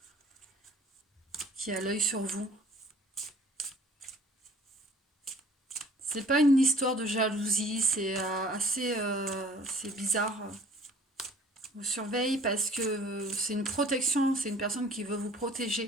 qui a l'œil sur vous. C'est pas une histoire de jalousie, c'est c'est bizarre. Vous surveille parce que c'est une protection, c'est une personne qui veut vous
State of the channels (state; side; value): normal; both; correlation 0.51